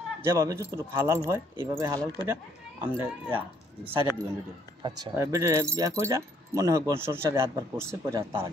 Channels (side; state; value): both; normal; correlation 0.66